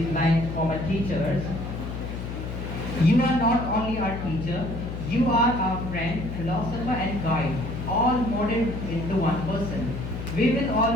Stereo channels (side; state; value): left; noise; hum, 6 dB below the sound